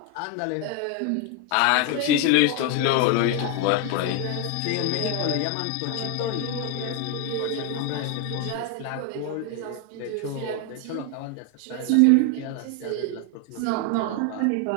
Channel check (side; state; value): both; different; correlation 0.01